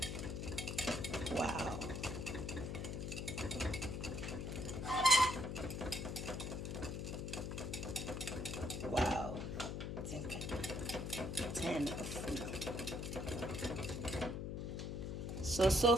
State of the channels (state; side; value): noise; left; hum, 4 dB below the sound